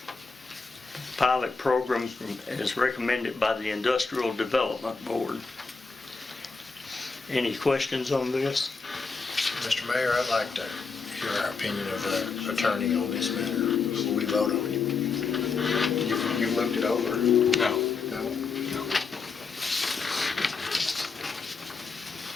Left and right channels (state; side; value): quieter; right; 4.7 dB